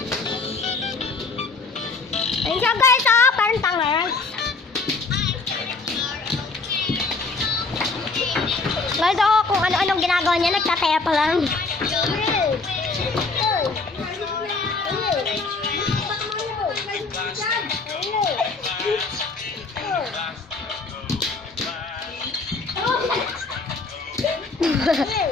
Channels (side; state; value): right; quieter; 3.9 dB